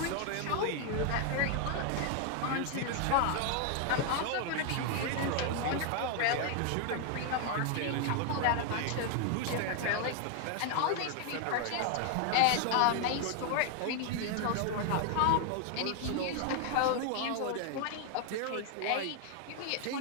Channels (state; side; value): different; both; correlation 0.00